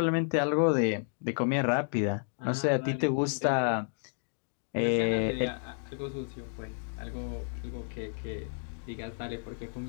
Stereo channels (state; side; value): silent; right; digital silence